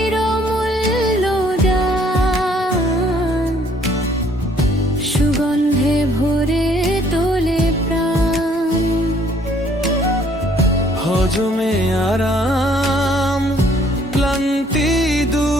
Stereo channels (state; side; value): normal; both; correlation 0.62